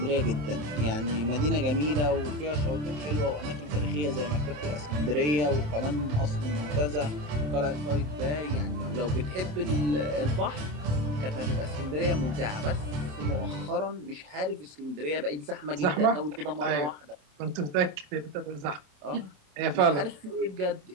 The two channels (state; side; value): late; left; 27 ms